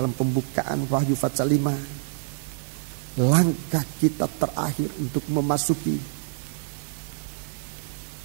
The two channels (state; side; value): silent; left; digital silence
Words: pembukaan Wahyu pasal 5, langkah kita terakhir untuk memasuki